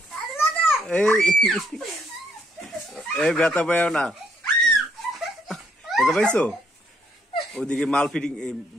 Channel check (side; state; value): both; normal; correlation 0.70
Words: এই ব্যথা পাইও না, ব্যথা পাইছো? ওদিকে মাল ফিটিং